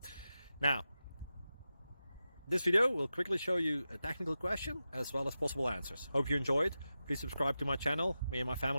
Now, this video will quickly show you a technical question as well as possible answers. Hope you enjoyed. Please subscribe to my channel. Me and my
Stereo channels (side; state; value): both; inverted; correlation -0.92